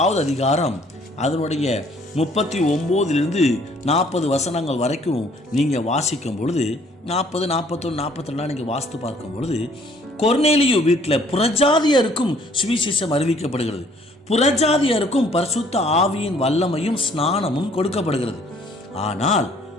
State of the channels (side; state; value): both; normal; correlation 0.60